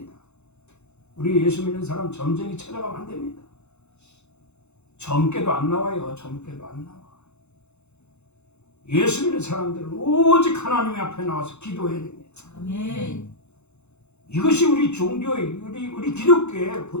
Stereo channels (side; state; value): right; late; 0.82 ms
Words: 우리 예수 믿는 사람 점쟁이 찾아가면 안 됩니다. 점괘도 안 나와요. 점괘도 안 나와. 예수 믿는 사람들은 오직 하나님 앞에 나와서 기도해야 됩니다. 아멘. 이것이 우리 종교의, 우리 기독교의